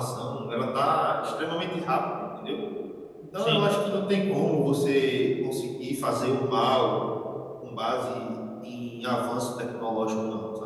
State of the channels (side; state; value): both; identical; correlation 1.00